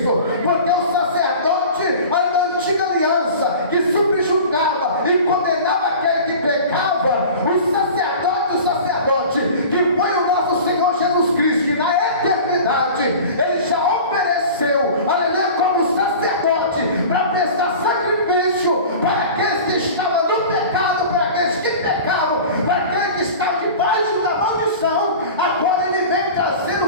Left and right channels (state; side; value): inverted; both; correlation -0.38